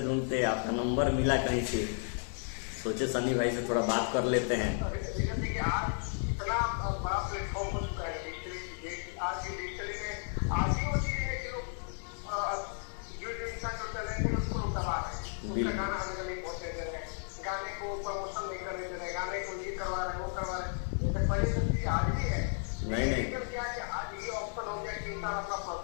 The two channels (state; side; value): silent; right; 55 dB below the other